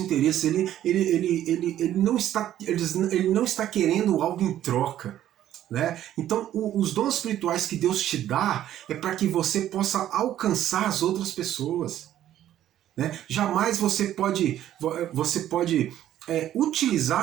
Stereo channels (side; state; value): left; quieter; 12.1 dB